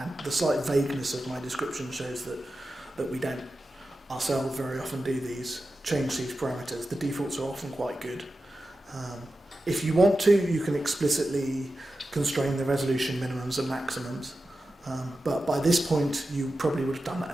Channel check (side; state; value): both; normal; correlation 0.92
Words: the slight vagueness of my description shows that we don't ourselves very often do change these parameters. The defaults are often quite good. If you want to, you can explicitly constrain the resolution minimums and maximums, but by this point you probably would have done that